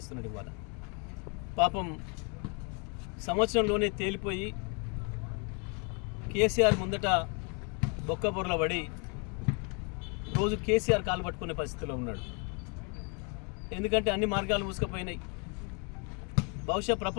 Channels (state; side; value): quieter; right; 35.8 dB